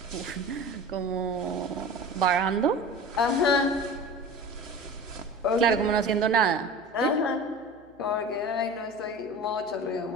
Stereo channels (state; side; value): noise; left; hum, 29 dB below the sound